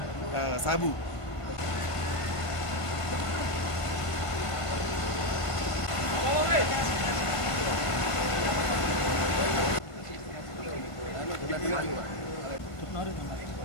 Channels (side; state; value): right; late; 1.5 ms